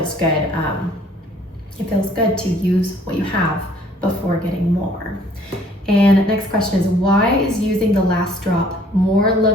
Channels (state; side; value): normal; both; correlation 0.59